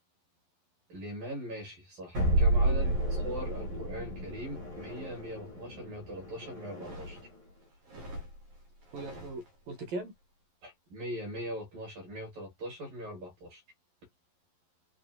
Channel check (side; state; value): left; late; 11 ms